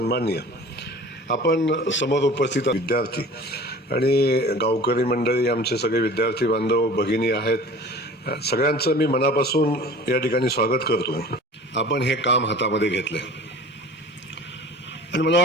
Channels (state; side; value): normal; both; correlation 0.42